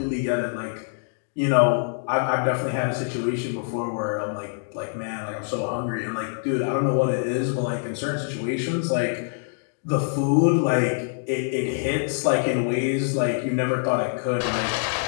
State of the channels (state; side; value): silent; right; digital silence